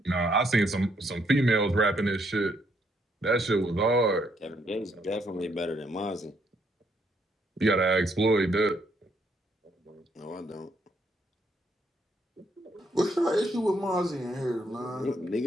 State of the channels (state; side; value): normal; both; correlation 0.72